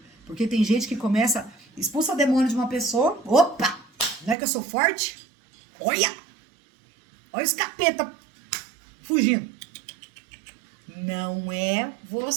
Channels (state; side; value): drops out; left; at 4.4 s